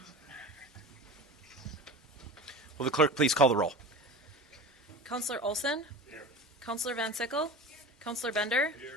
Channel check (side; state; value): both; normal; correlation 0.33